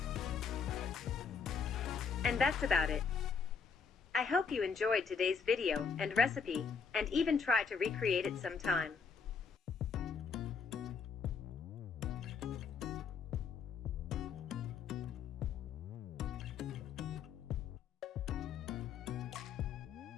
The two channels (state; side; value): quieter; right; 5.7 dB